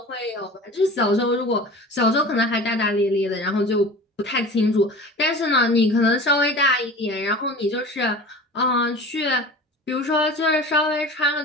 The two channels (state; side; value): normal; both; correlation 0.38